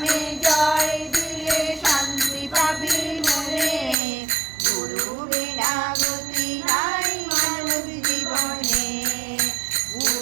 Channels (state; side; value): drops out; left; at 4.0 s